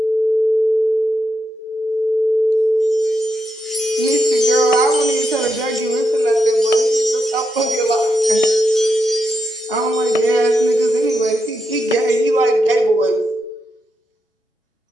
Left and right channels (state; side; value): normal; both; correlation 0.84